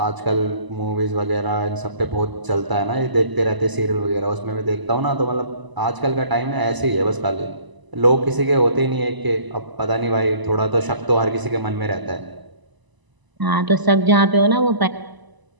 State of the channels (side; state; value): left; late; 1.0 ms